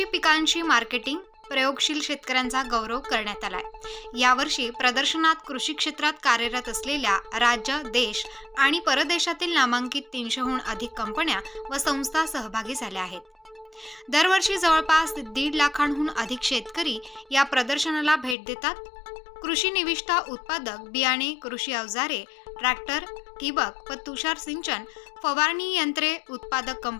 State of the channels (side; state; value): right; drops out; at 18.4 s